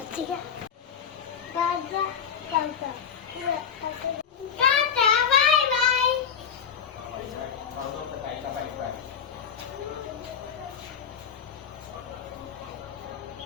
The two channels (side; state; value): right; quieter; 7.3 dB